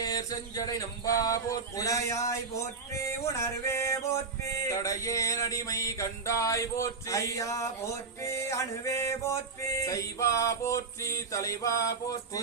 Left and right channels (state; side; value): quieter; left; 4.6 dB